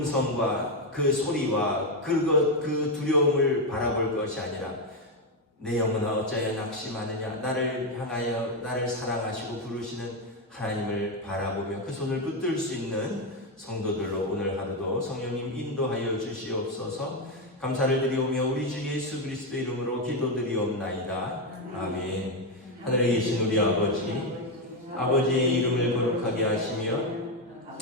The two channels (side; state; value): both; normal; correlation 0.07